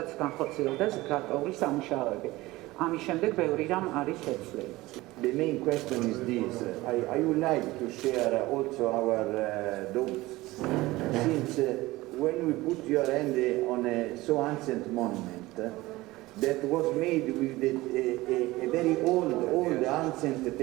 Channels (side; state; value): left; quieter; 19.2 dB